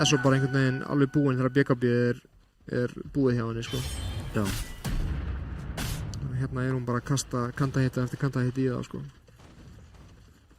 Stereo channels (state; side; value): identical; both; correlation 1.00